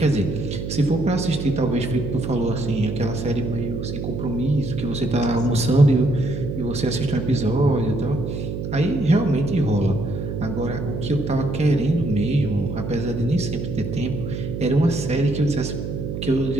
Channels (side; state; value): right; noise; hum, 5 dB below the sound